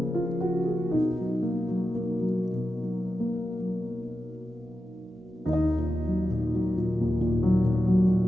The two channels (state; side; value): normal; both; correlation 0.91